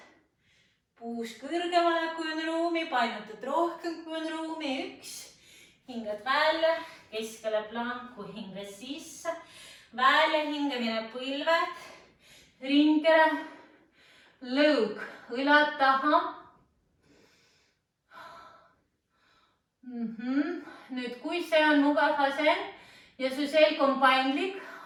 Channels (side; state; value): both; identical; correlation 1.00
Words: Puus kõrgemale, kui on ruumi, painutad rohkem, kui on ruumi, 1. Hingad välja, keskele planku, hinga sisse, välja hingamine põlved, ringkera, lõug, õlad taha. Nüüd, kui see on mugav asend ja su selg on paindlik,